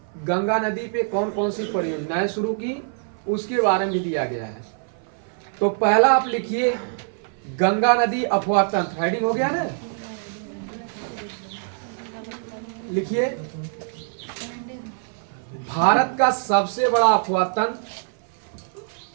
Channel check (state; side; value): silent; left; 57 dB below the other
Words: गंगा नदी पे कौन कौन सी परियोजनाएं शुरू की उसके बारे में भी दिया गया है। तो पहला आप लिखिए गंगा नदी अफवाह तंत्र, हेडिंग हो गया ना? लिखिए भारत का सबसे बड़ा अफवाह तंत्र,